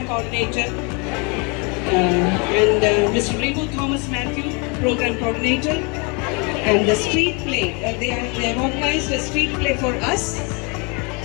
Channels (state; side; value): quieter; right; 31.9 dB